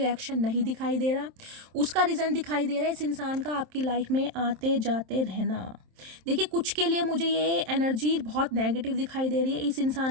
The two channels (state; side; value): late; left; 27 ms